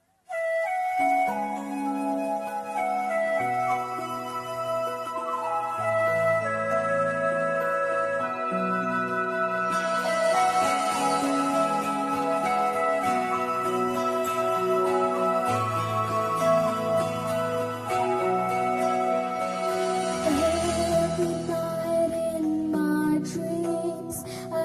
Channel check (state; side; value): identical; both; correlation 1.00